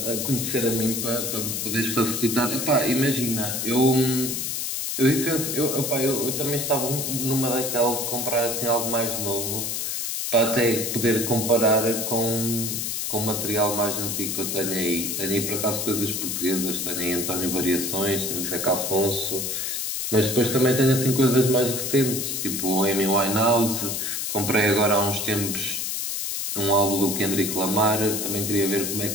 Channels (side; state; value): left; noise; hiss, 2 dB below the sound